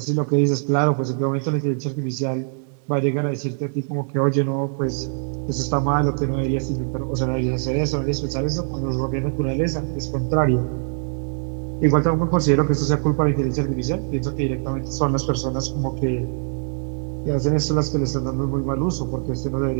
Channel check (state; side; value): silent; left; 64 dB below the other